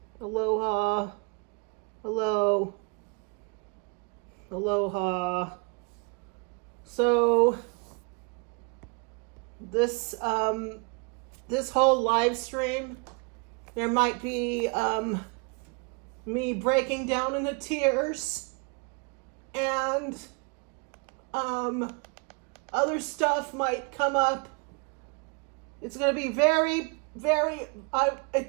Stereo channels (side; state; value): left; quieter; 32.2 dB